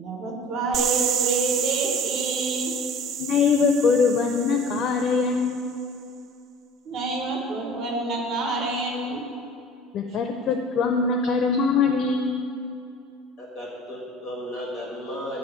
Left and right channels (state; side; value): normal; both; correlation 0.45